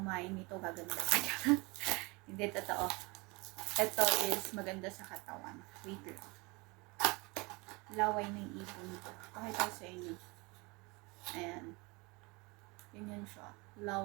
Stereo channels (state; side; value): quieter; left; 26.5 dB